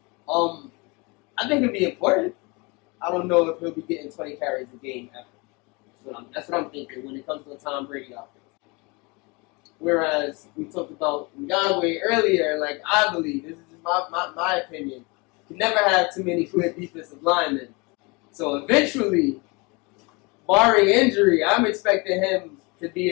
I think it'll be important. I don't know if he'll be getting 20 carries a game ever. That's what I'm thinking when it comes to a Tom Brady offense. Whereas we talked about Ngakwe earlier, like I believe, this is just my opinion, you can never have too many good defensive linemen. So eventually, barring injury, I'm expecting him to be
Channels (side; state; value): right; quieter; 27.8 dB